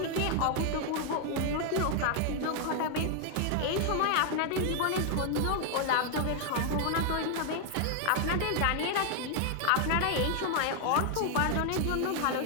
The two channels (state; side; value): different; both; correlation 0.00